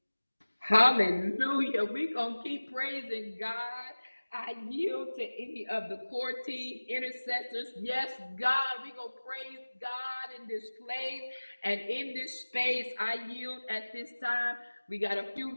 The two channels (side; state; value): both; inverted; correlation -1.00